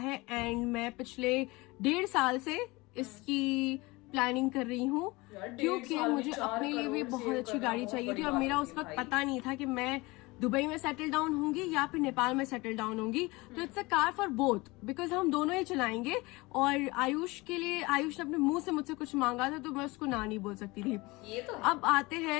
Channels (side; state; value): right; quieter; 23.1 dB